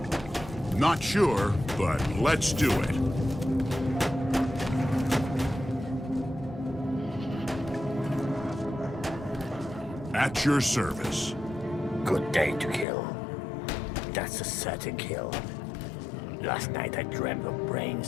Not sure, but let's do it. At your service. Good day to kill. That's a certain kill. Last night I dreamt of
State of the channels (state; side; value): drops out; right; at 12.9 s